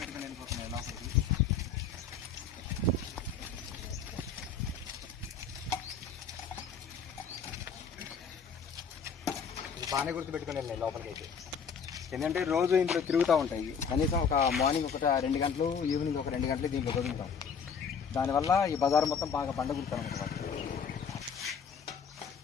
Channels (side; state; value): right; quieter; 6.2 dB